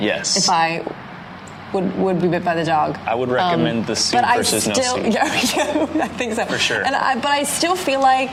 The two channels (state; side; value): identical; both; correlation 1.00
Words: Yes. If I would be bit by the dog. I would recommend the suit versus no suit. Yeah, I think so. For sure. But I still feel